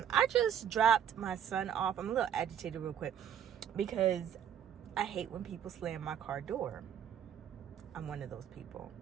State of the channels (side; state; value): left; quieter; 9.3 dB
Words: just dropped my son off. I'm a little agitated real quick because I hate when people slam my car door. I'm one of those people.